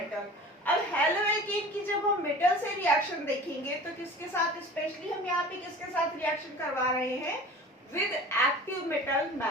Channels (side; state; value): both; normal; correlation 0.40